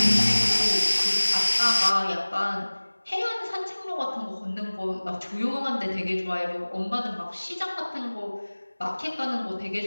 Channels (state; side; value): inverted; both; correlation -1.00